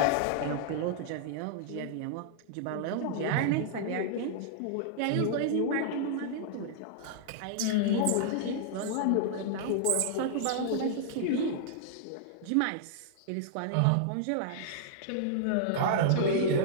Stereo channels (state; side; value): different; both; correlation -0.01